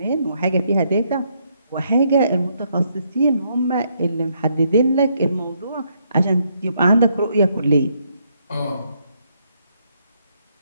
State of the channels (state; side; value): inverted; both; correlation -0.74